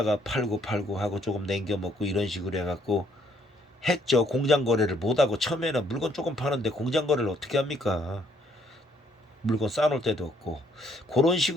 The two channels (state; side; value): normal; both; correlation 0.67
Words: 팔고 하고 조금 남겨 먹고 이런 식으로 해갖고 했죠. 공장 거래를 못하고 처음에는 물건 조금 파는데 공장 거래를 어떻게 합니까? 물건 쌓아놓을 때도 없고 그런